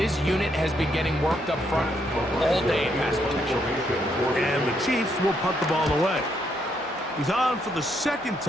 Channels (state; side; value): normal; both; correlation 0.75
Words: unit has been getting worked up front all day in pass protection. And the Chiefs will punt the ball away. He's on for the 2nd